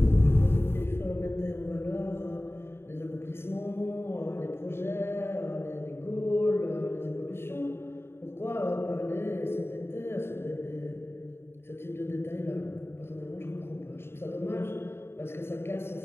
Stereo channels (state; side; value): late; right; 0.11 ms